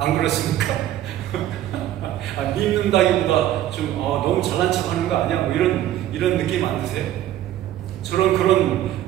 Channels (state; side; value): quieter; left; 12.8 dB